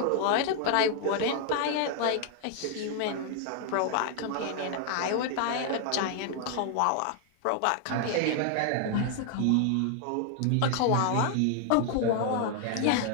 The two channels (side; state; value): both; different; correlation 0.00